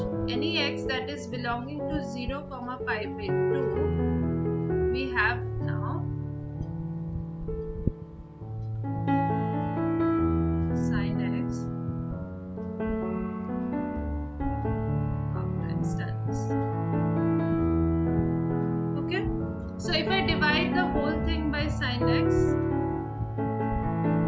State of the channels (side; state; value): both; identical; correlation 1.00